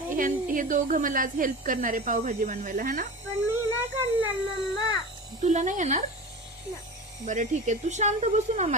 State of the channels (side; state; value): both; normal; correlation 0.30